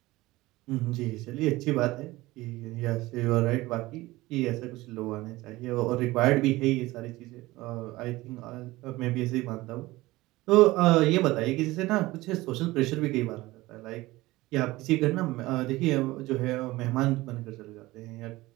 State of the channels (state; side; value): quieter; left; 19.1 dB